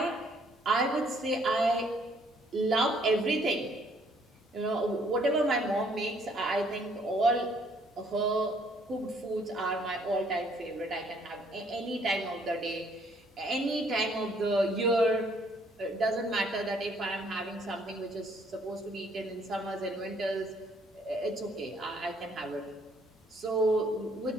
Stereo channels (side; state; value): both; normal; correlation 0.65